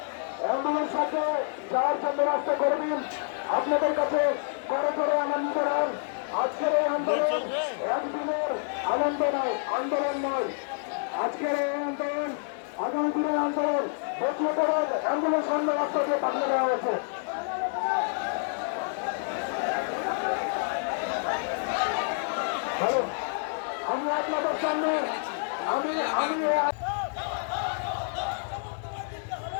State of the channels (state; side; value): silent; right; digital silence